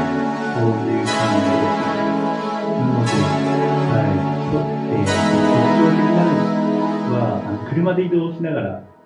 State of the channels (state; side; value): identical; both; correlation 1.00